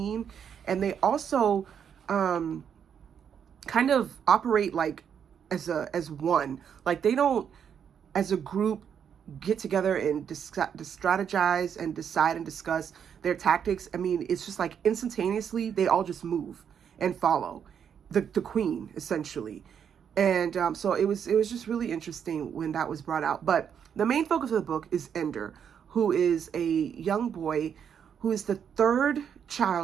and they also kind of operate like as one. Like they don't, as a group, get together and strategize and decide and discuss their tactics. I mean, it's just like instantaneously they all just move and follow the queen essentially. And so it was just really interesting when that was brought out. But the main focus of the book is Ender, who is a young boy who is the third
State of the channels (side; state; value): left; quieter; 7.9 dB